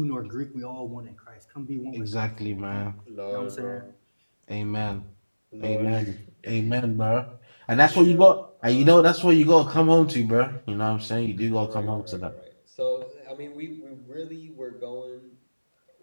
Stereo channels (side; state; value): both; inverted; correlation -1.00